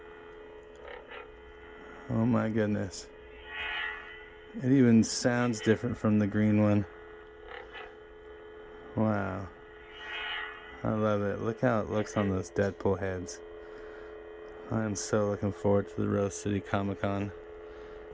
Oh my goodness. It even sounds different from the green one. Wow. I love it. Look how it looks on those Deadpool heads. I'm so looking forward to the Rose City Comic Con.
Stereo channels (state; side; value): identical; both; correlation 1.00